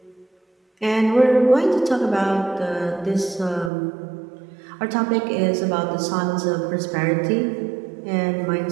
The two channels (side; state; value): left; drops out; at 3.7 s